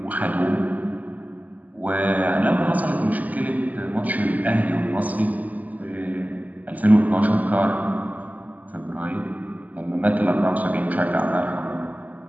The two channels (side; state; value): left; late; 0.078 ms